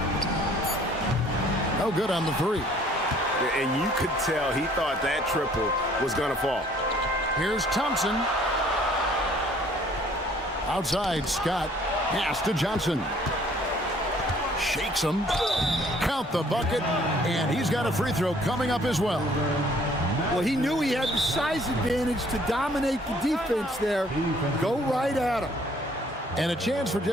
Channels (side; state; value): both; normal; correlation 0.58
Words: No good on the 3. And you could tell he thought that triple was going to fall. Here's Thompson. Outside, Scott. Pass to Johnson. Shakes him. Count the bucket. And he's got a free throw coming up as well. Well, he knew he had the size advantage to dominate the defense there. Go right at him. And a chance for